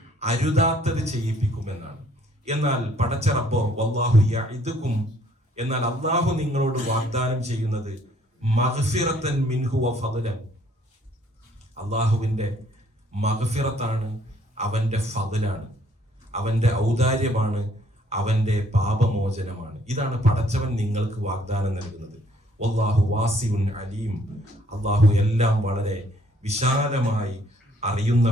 അരുതാത്തത് ചെയ്യിപ്പിക്കുമെന്നാണ്. എന്നാൽ പടച്ച റബ്ബോ വല്ലാഹു യഇദുകും, എന്നാൽ അല്ലാഹു നിങ്ങളോട് വാഗ്ദാനം ചെയ്യുന്നത് മഗ്ഫിറത്തൻ മിൻഹു വ ഫദ്ലൻ, അല്ലാഹുവിന്റെ മഗ്ഫിറത്താണ്, അവന്റെ ഫദ്ലാണ്, അവന്റെ ഔദാര്യമാണ്, അവന്റെ പാപമോചനമാണ്. ഇതാണ് പടച്ചവൻ നിങ്ങൾക്ക് വാഗ്ദാനം നൽകുന്നത്. വല്ലാഹു വാസിഉൻ അലീം, അല്ലാഹു എല്ലാം വളരെ വിശാലമായി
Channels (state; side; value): normal; both; correlation 0.63